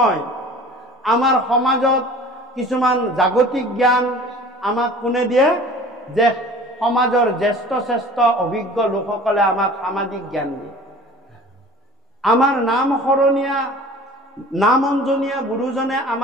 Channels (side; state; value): both; normal; correlation 0.44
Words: আমাৰ সমাজত কিছুমান জাগতিক জ্ঞান আমাক কোনে দিয়ে যে সমাজৰ জ্যেষ্ঠ শ্ৰেষ্ঠ অভিজ্ঞ লোকসকলে আমাক সামাজিক জ্ঞান দিয়ে আমাৰ নাম সৰণীয়া নাম অঞ্জনীয়া গুৰুজনে